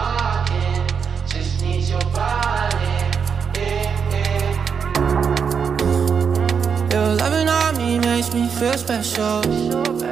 just need your body. Your loving on me makes me feel special.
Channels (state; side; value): quieter; left; 6.5 dB